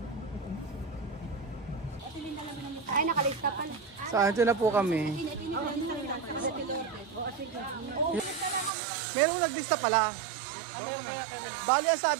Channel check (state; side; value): drops out; left; at 8.7 s